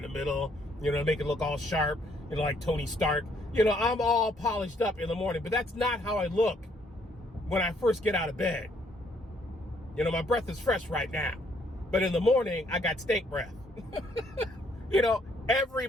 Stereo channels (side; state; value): both; normal; correlation 0.68